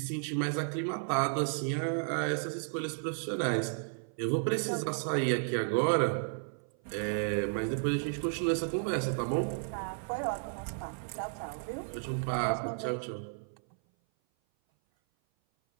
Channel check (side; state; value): left; silent; 56 dB below the other